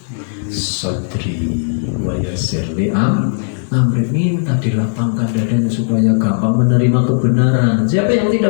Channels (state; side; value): silent; right; digital silence